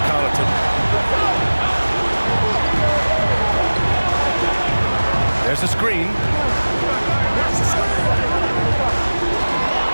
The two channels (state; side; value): inverted; both; correlation -1.00